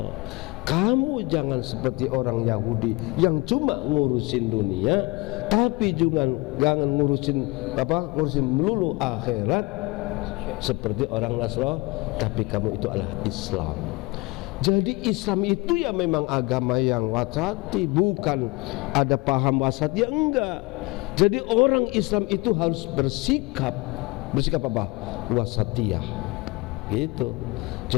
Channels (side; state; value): right; quieter; 25.1 dB